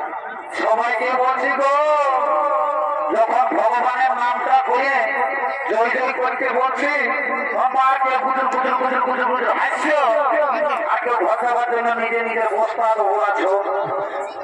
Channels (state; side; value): identical; both; correlation 1.00